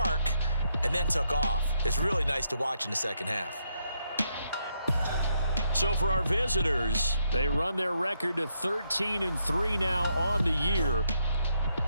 and then took off. It's really nice to watch in the 2nd half. So for our visitors, they run their record to 13-3 now on the year.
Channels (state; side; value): inverted; both; correlation -0.77